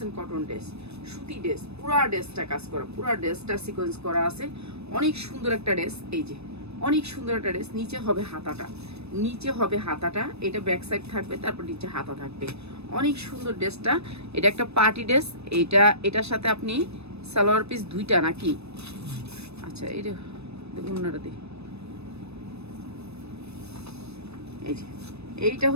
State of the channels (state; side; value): late; left; 0.79 ms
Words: কটন ড্রেস, সুতি ড্রেস, পুরা ড্রেসটা কাজ করা, পুরা ড্রেসটা সিকোয়েন্স করা আছে, অনেক সুন্দর একটা ড্রেস। এই যে অনেক সুন্দর একটা ড্রেস, নিচে হবে হাতাটা, এটা ব্যাক সাইড থাকবে, তারপর নিচে হাতা থাকবে, অনেক সুন্দর ড্রেসটা। এটা একটা পার্টি ড্রেস। এটার সাথে আপনি সালোয়ার পিস 2টা নাকি, আচ্ছা এটা উন্নাটা দিই। এই যে এইটা